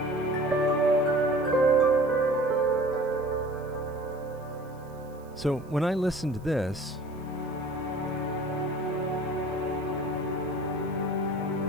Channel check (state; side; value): noise; right; hiss, 30 dB below the sound